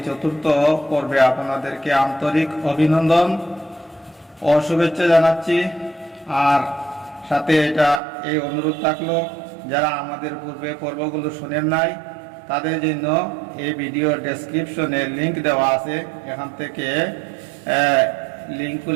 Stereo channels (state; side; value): drops out; left; at 8.0 s